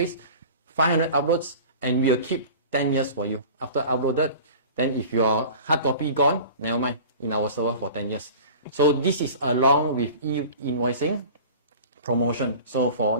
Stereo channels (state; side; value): inverted; both; correlation -0.40